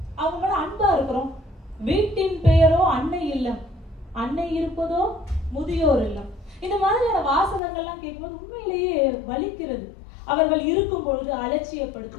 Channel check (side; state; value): right; drops out; at 7.6 s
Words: அவங்க மேல அன்பா இருக்கிறோம்? வீட்டின் பெயரோ அன்னை இல்லம், அன்னை இருப்பதோ முதியோர் இல்லம். இந்த மாதிரியான வாசகங்கள்லாம் கேட்கும்போது உண்மையிலேயே வலிக்கிறது. அவர்கள் இருக்கும் பொழுது